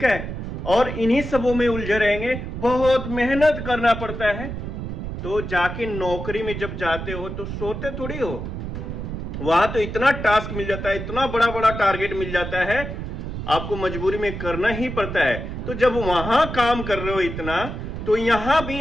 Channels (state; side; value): noise; right; rumble, 6 dB below the sound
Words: है। और इन्हीं सबों में उलझे रहेंगे, बहुत मेहनत करना पड़ता है। तो जाके नौकरी में जब जाते हो तो सोते थोड़ी हो, वहां तो इतना टास्क मिल जाता है, इतना बड़ा बड़ा टारगेट मिल जाता है, आपको मजबूरी में करना ही पड़ता है। तो जब वहां काम कर रहे हो इतना, तो यहां भी